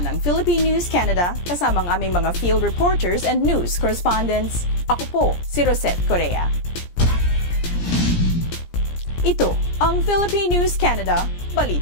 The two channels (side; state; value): right; late; 17 ms